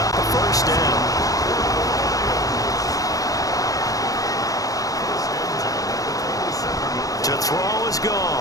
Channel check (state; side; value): late; right; 0.17 ms